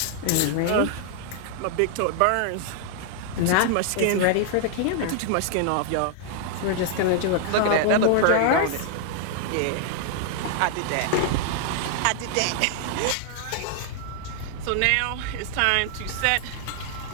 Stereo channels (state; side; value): different; both; correlation 0.00